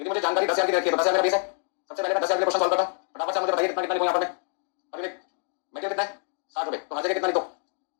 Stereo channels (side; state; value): right; silent; 58 dB below the other